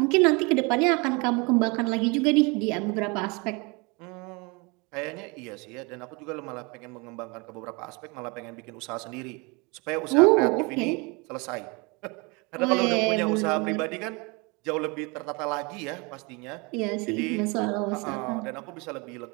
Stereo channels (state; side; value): quieter; left; 28.7 dB